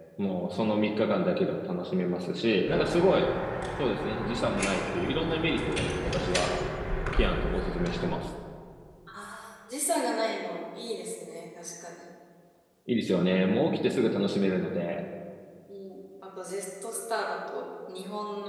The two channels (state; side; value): identical; both; correlation 1.00